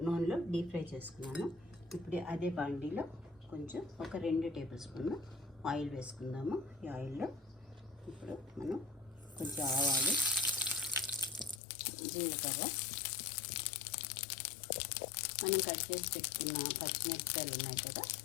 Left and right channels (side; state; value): right; drops out; at 11.6 s